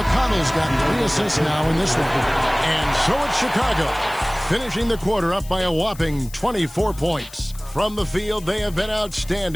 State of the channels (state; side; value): noise; left; hiss, 19 dB below the sound